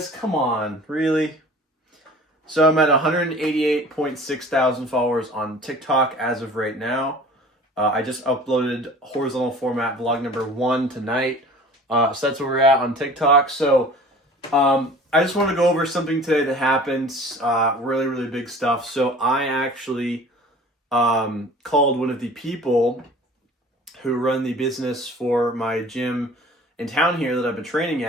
come on, really? So I'm at 188.6 thousand followers on TikTok as of right now. I just uploaded horizontal format vlog number 1 tonight. So that's where we're at on TikTok. So I just want to go over something today that happened. Really, really big stuff. So I actually called one of the people who run the business for my gym in town here that I've been training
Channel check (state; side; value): normal; both; correlation 0.45